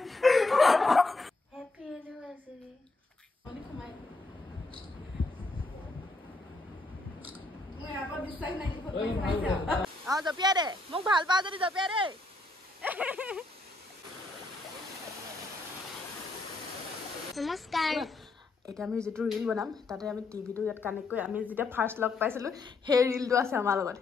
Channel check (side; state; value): right; quieter; 3.1 dB